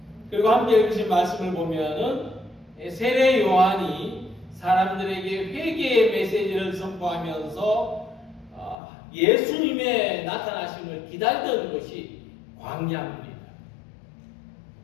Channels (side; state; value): right; drops out; at 8.8 s